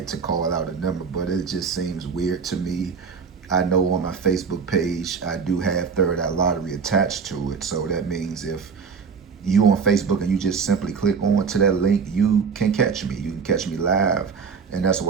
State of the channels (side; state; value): left; quieter; 5.8 dB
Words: to call out a number, but it just seems weird to me. I know on my Facebook page, I do have Third Eye Lottery attached to it. So that means if you on Facebook and you just simply click on to that link, you can catch me. You can catch me live. And that's